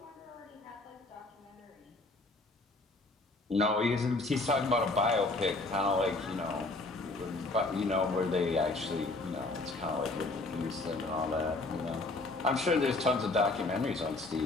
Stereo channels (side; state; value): right; quieter; 3.1 dB